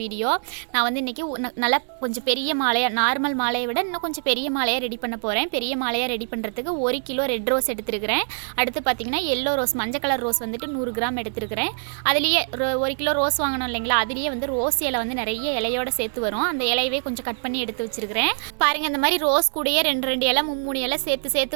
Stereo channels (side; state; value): left; silent; digital silence